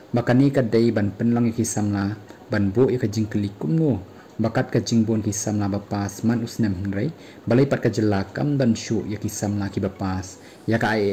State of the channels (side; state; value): both; identical; correlation 1.00